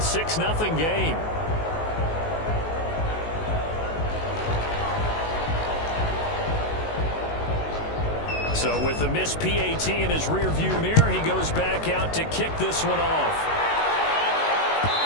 game. So with the missed PAT in his rearview mirror, he goes back out to kick this one off.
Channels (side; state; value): right; late; 19 ms